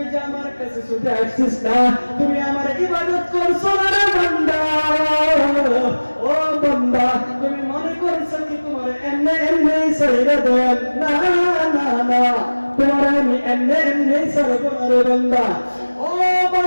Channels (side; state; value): both; inverted; correlation -1.00